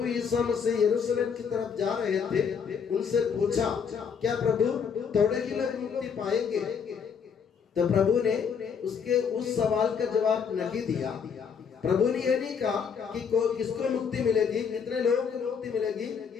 यीशु मसीह यरूशलेम की तरफ जा रहे थे, उनसे पूछा, क्या प्रभु थोड़े ही लोग मुक्ति पाएंगे? तो प्रभु ने उसके उस सवाल का जवाब नहीं दिया। प्रभु ने ये नहीं कहा कि किसको मुक्ति मिलेगी, कितने लोगों को मुक्ति मिलेगी,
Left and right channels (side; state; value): right; quieter; 6.6 dB